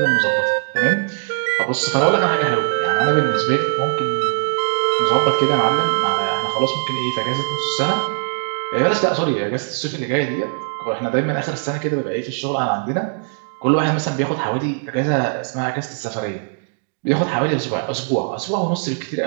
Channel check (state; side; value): silent; left; digital silence